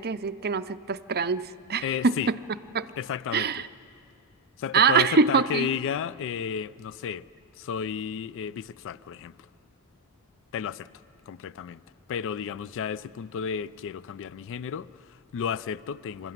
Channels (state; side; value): normal; both; correlation 0.05